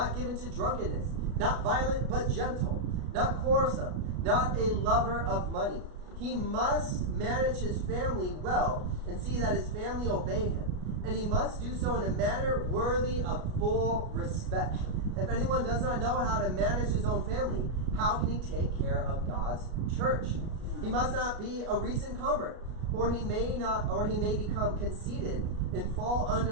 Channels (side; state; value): left; late; 33 ms